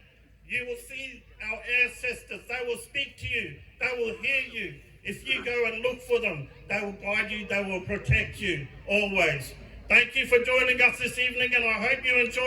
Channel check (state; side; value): identical; both; correlation 1.00